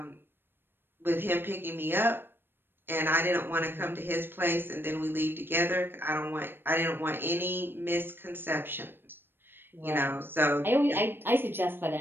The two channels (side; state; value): left; late; 0.10 ms